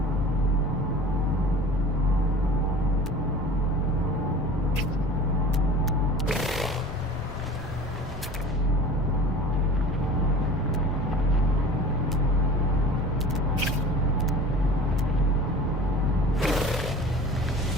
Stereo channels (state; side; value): normal; both; correlation 0.40